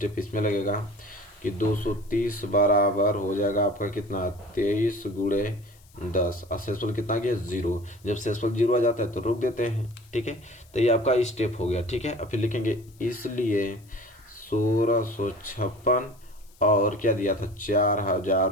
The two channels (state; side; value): noise; left; hiss, 29 dB below the sound